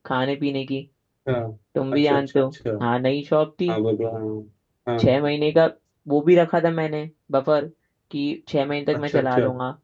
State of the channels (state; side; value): identical; both; correlation 1.00